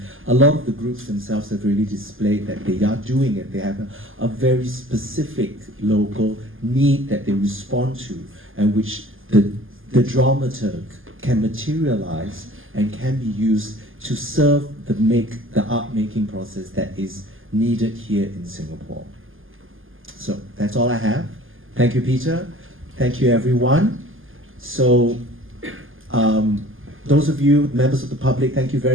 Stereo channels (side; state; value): left; late; 0.59 ms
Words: a lot of the groups themselves have really displayed that they are doing it. They have a very specific local need that they respond to, and which the dramaturg can materialize and can be used to serve the art-making process that is needed here in Singapore. So that's all I have. Thank you, Peter. Thank you, everyone. So those of you, members of the public, thank you